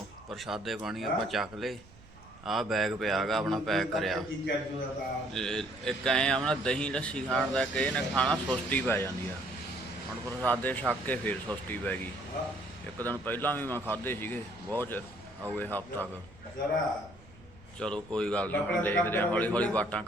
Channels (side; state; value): right; noise; rumble, 23 dB below the sound